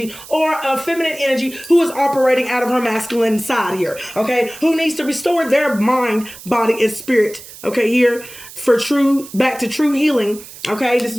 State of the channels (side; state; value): right; noise; hiss, 17 dB below the sound